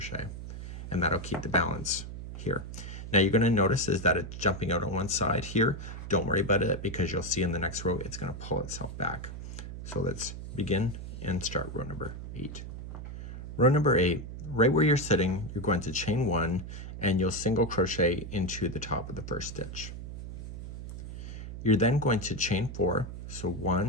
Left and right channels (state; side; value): noise; right; hum, 9 dB below the sound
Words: and that'll keep the balance here. Now you're going to notice is that it's jumping out on one side here. Don't worry about it, because you'll see in the next row it's going to pull itself back. So let's begin and start row number 8. Row number 8, right where you're sitting, you're going to chain 1 and you'll single crochet into the top of the first stitch. You're then going to chain 4, so